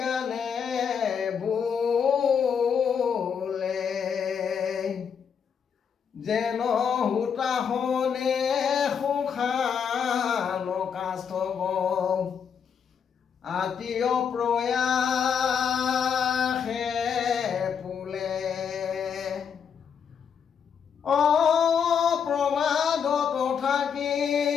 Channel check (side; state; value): right; quieter; 7.1 dB